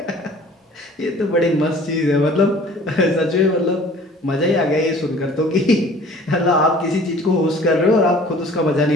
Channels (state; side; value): normal; both; correlation 0.49